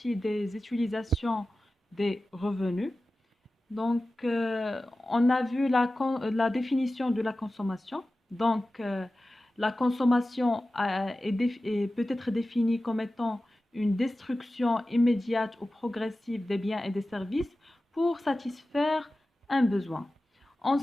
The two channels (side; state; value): both; normal; correlation 0.95